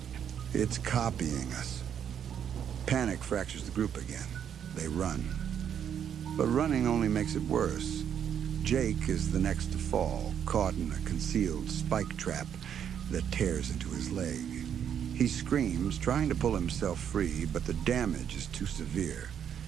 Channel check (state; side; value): quieter; left; 8.7 dB